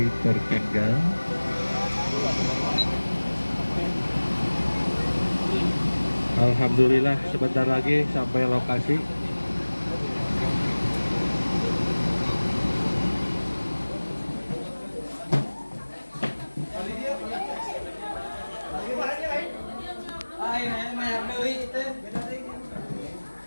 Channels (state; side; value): inverted; both; correlation -1.00